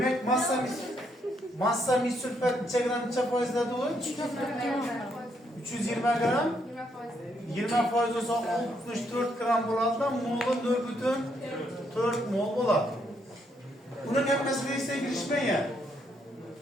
massa mis sülfat neçe gram neçe faizde dolu? 320 gram. 20 faiz olsa 64 gram bo'ladi da mol'u 4,4 mol bo'ladi. Bunun hammasi reaksiyaga kirishmaydi.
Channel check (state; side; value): normal; both; correlation 0.74